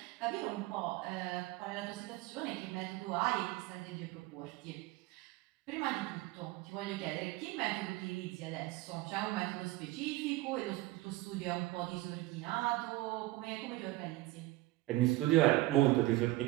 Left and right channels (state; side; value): quieter; left; 18.7 dB